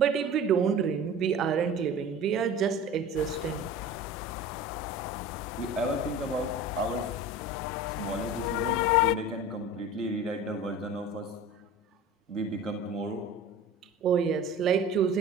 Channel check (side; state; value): both; normal; correlation 0.37